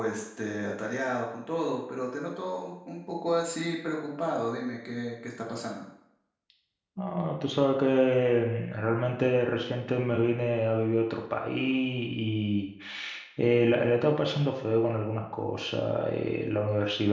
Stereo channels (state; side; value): identical; both; correlation 1.00